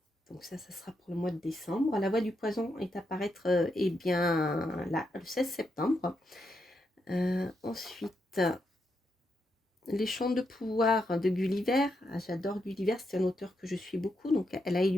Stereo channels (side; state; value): both; normal; correlation 0.82